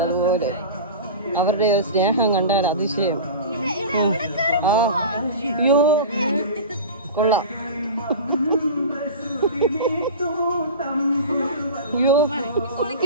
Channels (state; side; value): inverted; both; correlation -0.31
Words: അതുപോലെ അവരുടെ സ്നേഹം കണ്ടാൽ അതിശയം. അയ്യോ കൊള്ളാം. അയ്യോ